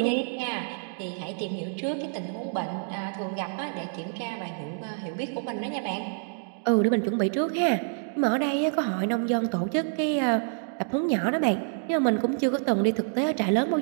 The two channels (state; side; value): silent; left; digital silence